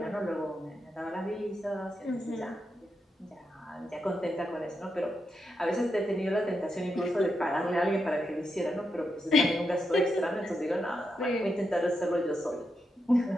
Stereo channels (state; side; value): normal; both; correlation 0.85